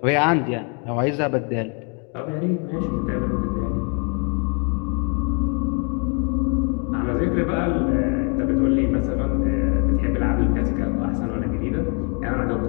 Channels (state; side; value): quieter; right; 37.5 dB